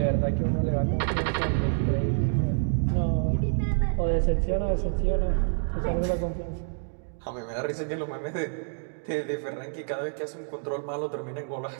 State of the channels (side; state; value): left; silent; digital silence